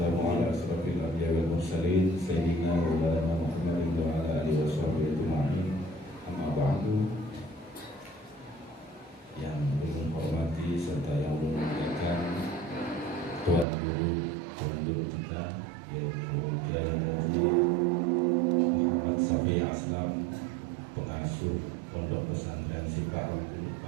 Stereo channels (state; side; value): drops out; left; at 13.7 s